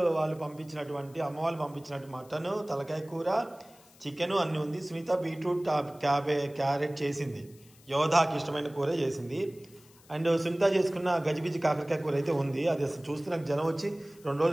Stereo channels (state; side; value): noise; left; hiss, 26 dB below the sound